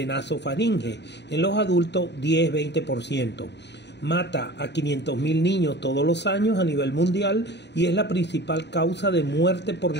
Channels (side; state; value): right; late; 0.50 ms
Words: nasofaringe. En los adultos, 10-20%. Mata a 500.000 niños todos los años a nivel mundial y es la principal causa de muerte por